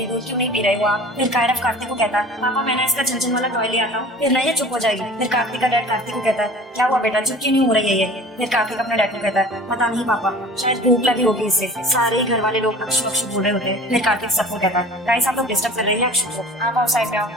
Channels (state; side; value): normal; both; correlation 0.42